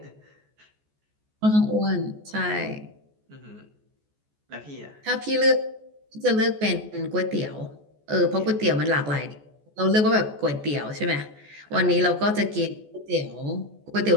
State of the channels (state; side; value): late; left; 14 ms